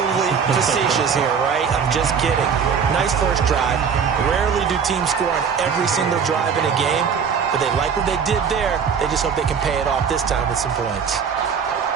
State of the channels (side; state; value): left; quieter; 6.6 dB